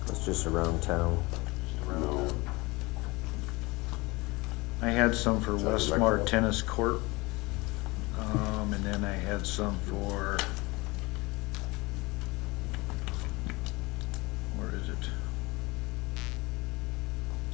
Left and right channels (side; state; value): right; quieter; 23.6 dB